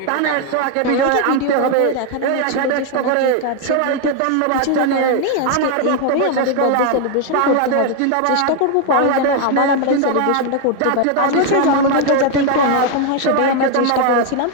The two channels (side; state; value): both; different; correlation 0.01